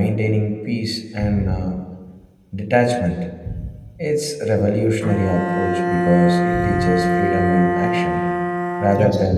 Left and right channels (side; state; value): both; identical; correlation 1.00